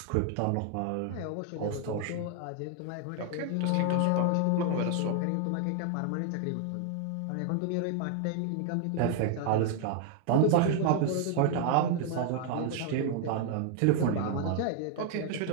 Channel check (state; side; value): different; both; correlation 0.00